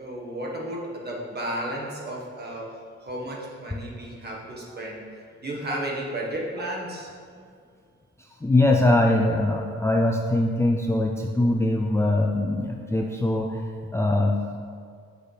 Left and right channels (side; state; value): both; normal; correlation 0.76